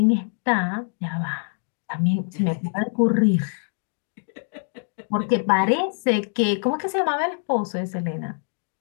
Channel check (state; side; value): silent; right; digital silence